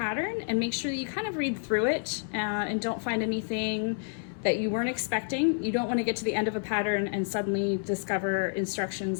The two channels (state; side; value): silent; right; digital silence